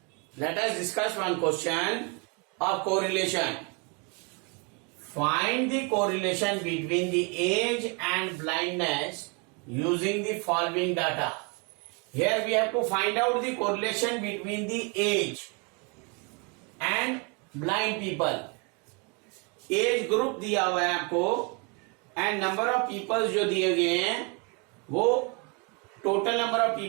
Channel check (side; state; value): left; quieter; 32.4 dB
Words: Let us discuss one question of correlation. Find the correlation between the age and blindness using the following data. Here we have to find out the correlation between the age and blind people. Age group दिया हुआ है आपको and number of people जो दिए गए हैं वो total number of